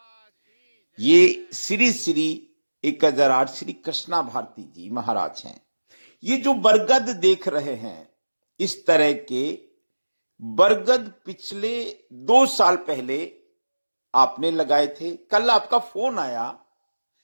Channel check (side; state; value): both; inverted; correlation -1.00